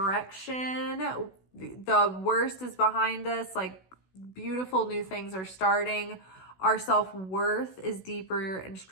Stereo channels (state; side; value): late; right; 16 ms